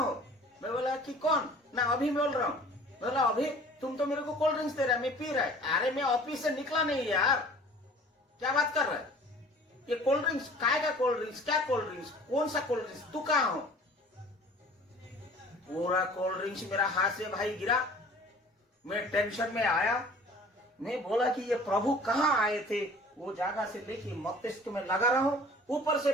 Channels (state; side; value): normal; both; correlation 0.47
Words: मैं बोला कि कौन? ना अभी बोल रहा हूँ। बोला अभी तुम तो मेरे को कोल्ड ड्रिंक्स दे रहा है, मैं पी रहा है। अरे मैं ऑफिस से निकला नहीं यार, क्या बात कर रहा है? ये कोल्ड ड्रिंक्स काय का कोल्ड ड्रिंक्स? क्या कोल्ड ड्रिंक्स? कौन सा कोल्ड ड्रिंक्स? तू कहाँ हो? पूरा कोल्ड ड्रिंक्स मेरा हाथ से भाई गिरा। मैं टेंशन में आया। मैं बोला कि ये प्रभु कहाँ आए थे? वो जगह से लेके मस्तिष्क में लगा रहा हूं। ऊपर से